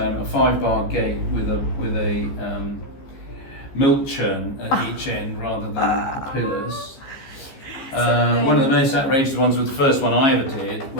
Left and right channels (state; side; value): late; right; 15 ms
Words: 5-bar gate with a milk churn at each end rather than the pillars. One of the most outrageous ones was the first one I ever did